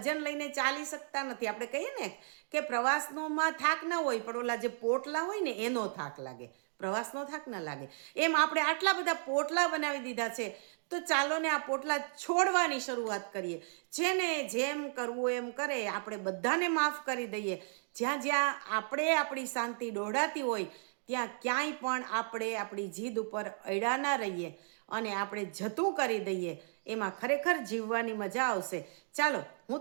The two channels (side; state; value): left; silent; digital silence